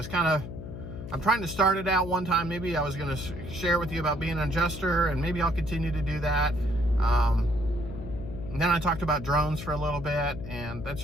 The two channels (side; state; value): left; noise; hum, 10 dB below the sound